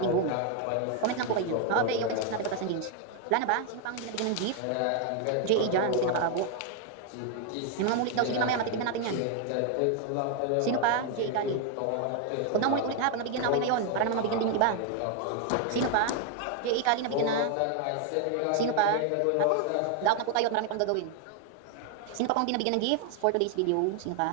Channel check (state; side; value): different; both; correlation 0.00